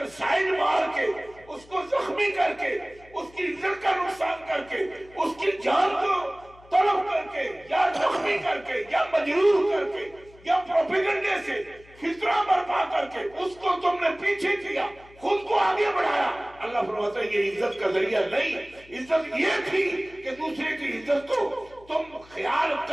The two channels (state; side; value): noise; left; hum, 25 dB below the sound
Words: سائڈ مار کے، اس کو زخمی کر کے، اس کی عزت کا نقصان کر کے، اس کی جان کو طلب کر کے یا زخمی کر کے یا مجروح کر کے یا پروپیگنڈے سے فتنہ برپا کر کے اس کو تم نے پیچھے کیا، خود کو آگے بڑھایا، اللہ فرماتا ہے یہ عزت کا ذریعہ نہیں۔ عزت یہ تھی کہ دوسرے کی عزت کو تم خیال